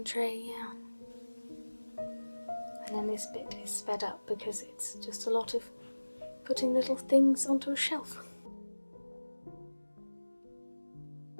tray, yeah. And then this bit is sped up because it's just a lot of putting little things onto a shelf.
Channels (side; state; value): both; inverted; correlation -1.00